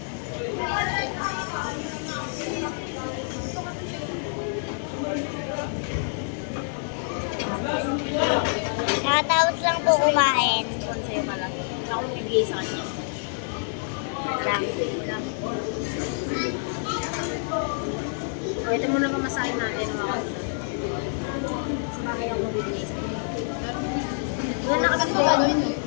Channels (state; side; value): silent; right; 60 dB below the other